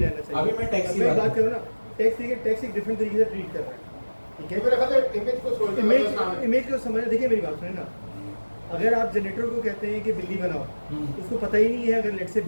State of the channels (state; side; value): inverted; both; correlation -1.00